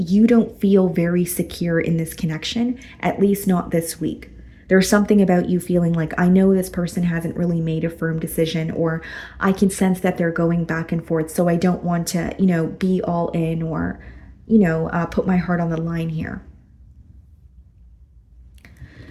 don't feel very secure in this connection, at least not this week. There's something about you feeling like, I know this person hasn't really made a firm decision, or I can sense that they're going back and forth. So I don't want to, be all in, or, put my heart on the line here.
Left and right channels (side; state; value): both; identical; correlation 1.00